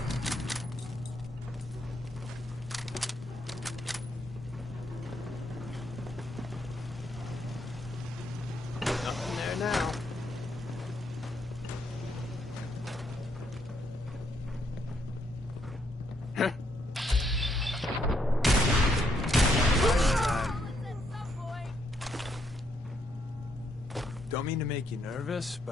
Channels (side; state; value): both; normal; correlation 0.75